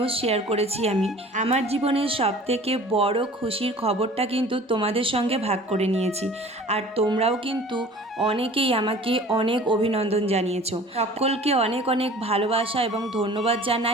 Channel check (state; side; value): normal; both; correlation 0.45